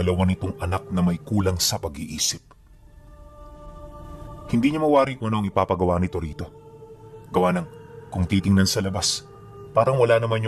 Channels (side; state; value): both; identical; correlation 1.00